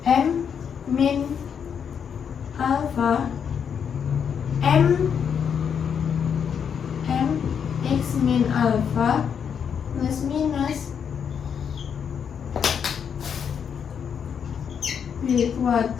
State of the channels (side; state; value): right; quieter; 7.4 dB